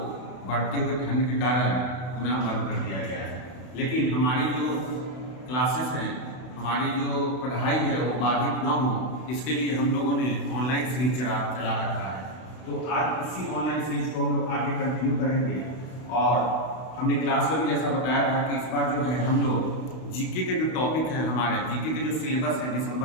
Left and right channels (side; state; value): right; late; 32 ms